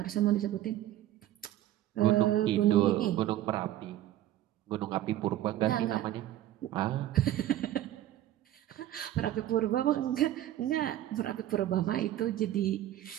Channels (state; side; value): quieter; left; 13.1 dB